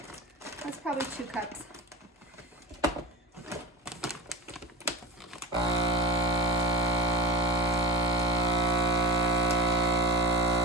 that's probably 2 cups.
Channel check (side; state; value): both; normal; correlation 0.27